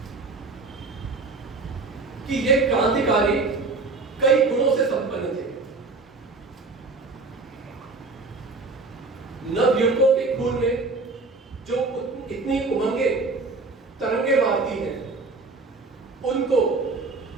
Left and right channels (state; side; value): quieter; left; 3.7 dB